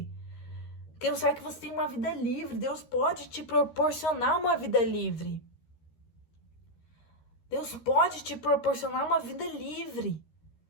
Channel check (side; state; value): right; late; 13 ms